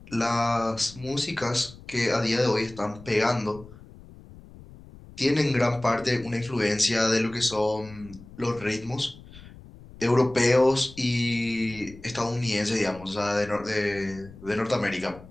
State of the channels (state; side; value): noise; left; rumble, 19 dB below the sound